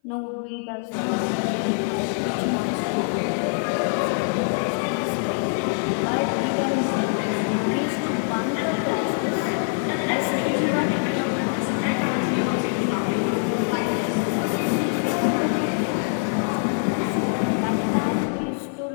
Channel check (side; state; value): right; silent; 58 dB below the other